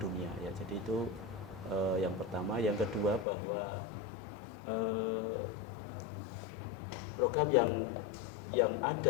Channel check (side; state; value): right; drops out; at 3.2 s